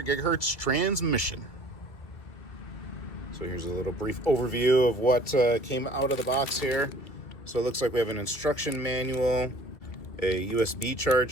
gigahertz transmission. So here's a little brief overview of what came out of the box here. So it looks like we have an instruction manual, a USB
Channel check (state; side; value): late; right; 2.1 ms